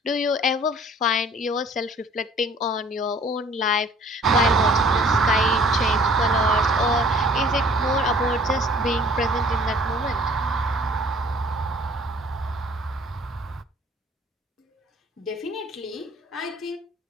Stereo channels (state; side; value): normal; both; correlation 0.53